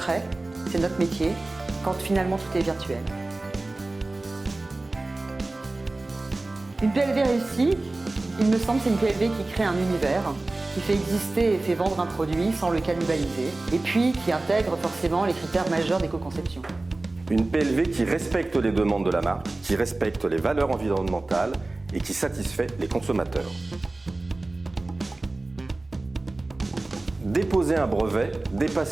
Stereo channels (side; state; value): left; quieter; 3.0 dB